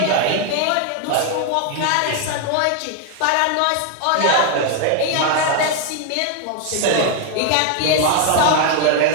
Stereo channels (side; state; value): both; different; correlation 0.01